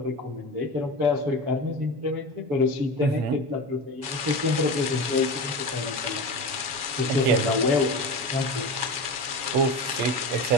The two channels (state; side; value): late; left; 7.3 ms